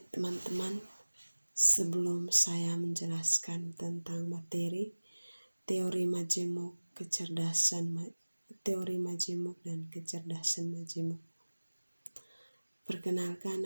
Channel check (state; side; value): inverted; both; correlation -1.00